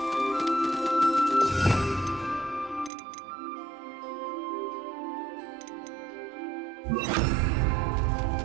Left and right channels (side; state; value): left; drops out; at 2.9 s